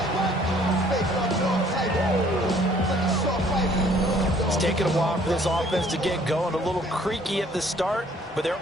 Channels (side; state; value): both; normal; correlation 0.59